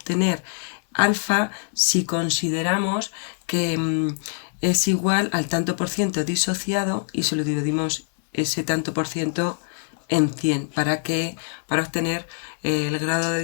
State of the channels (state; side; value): silent; right; 56 dB below the other